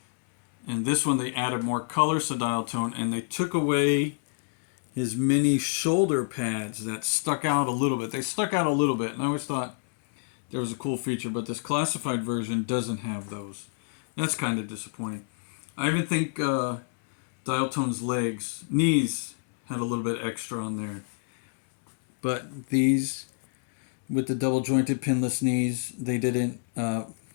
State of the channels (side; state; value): right; silent; digital silence